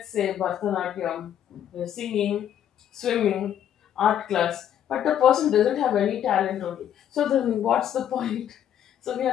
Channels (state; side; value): quieter; right; 10.1 dB